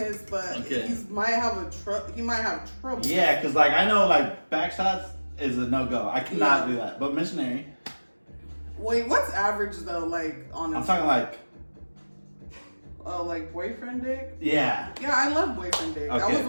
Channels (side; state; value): both; inverted; correlation -1.00